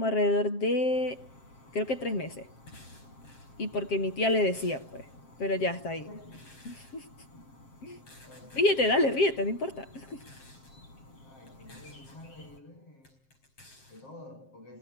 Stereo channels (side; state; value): right; late; 7.5 ms